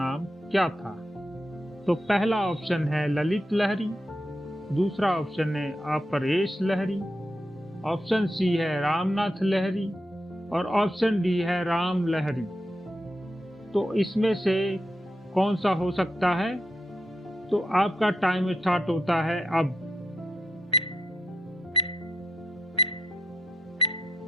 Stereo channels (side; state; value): both; normal; correlation 0.83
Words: क्या था? तो पहला ऑप्शन है ललित लहिरी, दूसरा ऑप्शन है अपरेश लहिरी, ऑप्शन सी है रामनाथ लहिरी और ऑप्शन डी है राम लहिरी। तो इसमें से कौन सा हो सकता है? तो आपका टाइम स्टार्ट होता है अब।